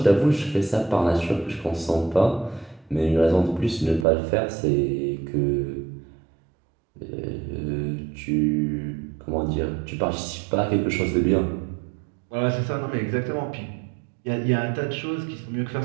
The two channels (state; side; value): drops out; left; at 4.0 s